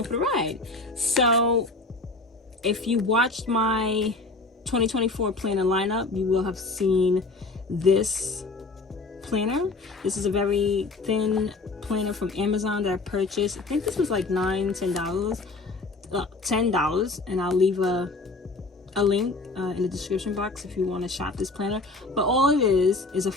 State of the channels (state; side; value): quieter; right; 3.4 dB